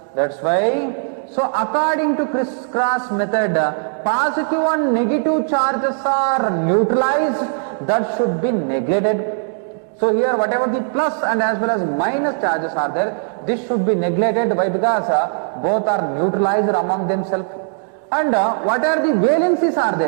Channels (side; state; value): left; silent; digital silence